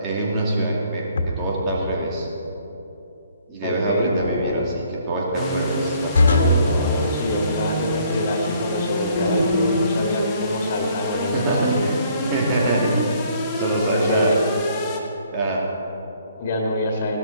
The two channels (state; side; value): inverted; both; correlation -0.63